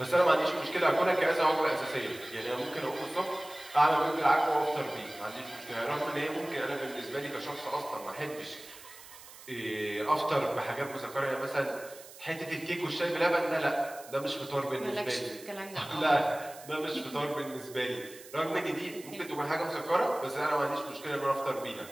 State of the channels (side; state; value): right; noise; hiss, 18 dB below the sound